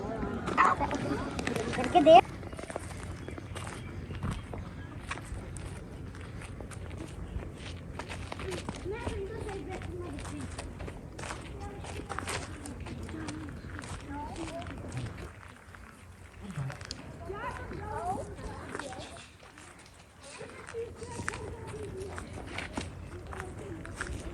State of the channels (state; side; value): identical; both; correlation 1.00